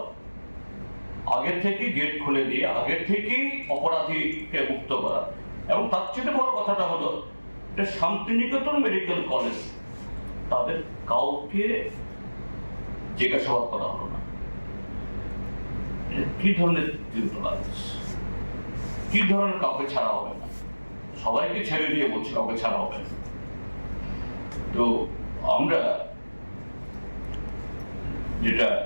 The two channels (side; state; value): both; inverted; correlation -1.00